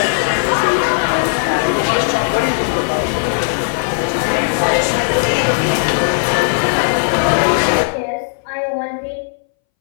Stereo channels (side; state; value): right; silent; 66 dB below the other